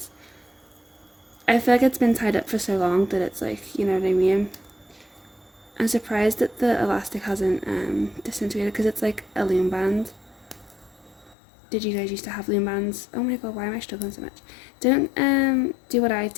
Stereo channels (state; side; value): drops out; right; at 11.4 s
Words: I feel like it's been tied up for so long that it's you know what I mean? I'm surprised that the elastic hasn't disintegrated because it's like a loom band. Did you guys used to have loom bands? Oh my god, why am I struggling so much? Don't do what I